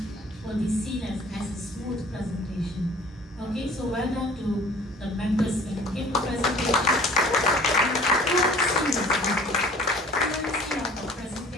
will be seen as a smooth presentation. Okay, so well done to the members when you gave the presentation. Fluency of the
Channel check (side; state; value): both; normal; correlation 0.49